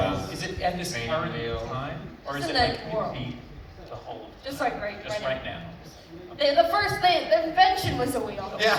Is it at this Training current wheel. time? Or is It's it in like the world. repeat the whole, Just like right now? The first thing, the invention was a wheel. yeah,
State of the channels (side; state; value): both; identical; correlation 1.00